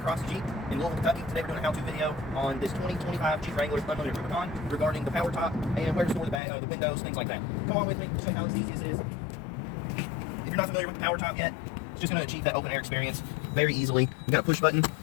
Cross Jeep in Louisville, Kentucky. Today we're doing a how-to video on this 2025 Jeep Wrangler Unlimited Rubicon regarding the power top and where to store the windows, things like that. Come on with me, show you how easy this is. If you're not familiar with the power top yet, it's just going to achieve that open air experience very easily. You've got a push button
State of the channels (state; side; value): drops out; right; at 6.4 s